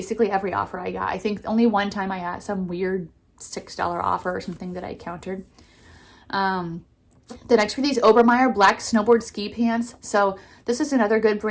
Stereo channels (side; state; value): both; identical; correlation 1.00